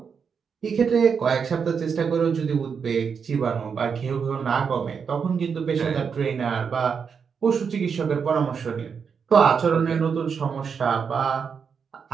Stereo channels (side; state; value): left; quieter; 6.3 dB